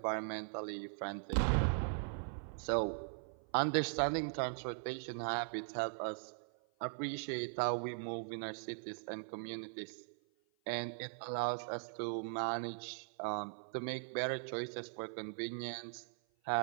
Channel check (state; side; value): silent; left; 51 dB below the other